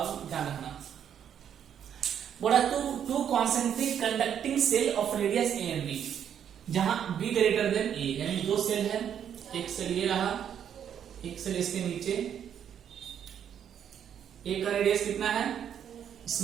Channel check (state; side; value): quieter; left; 8.9 dB